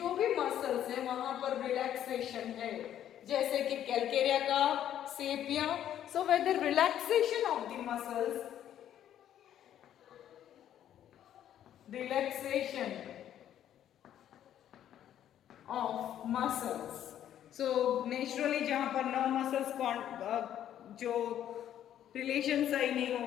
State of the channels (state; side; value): quieter; right; 10.8 dB